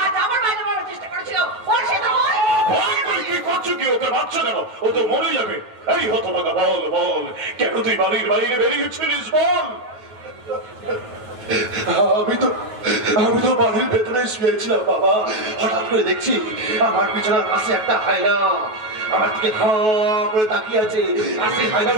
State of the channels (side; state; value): left; late; 9.3 ms